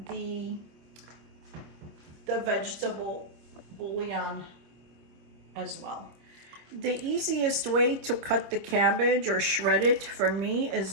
the vegetable bouillon as well. The easiest way to cut the cabbage or shred it for me is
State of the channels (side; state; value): left; late; 25 ms